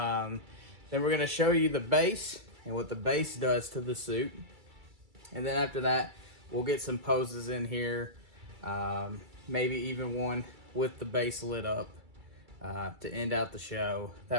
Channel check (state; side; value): late; left; 2.3 ms